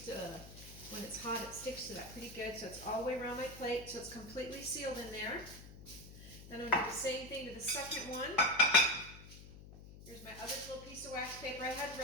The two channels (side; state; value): left; noise; hum, 16 dB below the sound